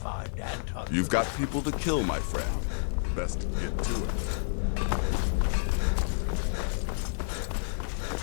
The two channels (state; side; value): silent; right; 58 dB below the other